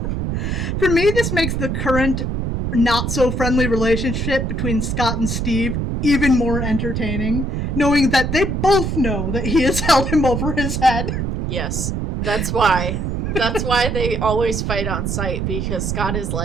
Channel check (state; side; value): noise; right; rumble, 1 dB below the sound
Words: For me, this makes the current not-so-friendly relationship between Scott and Steve even more entertaining, knowing that they both know that he has held him over his head. Yes. That's why. That's why they always fight on sight, because Scott is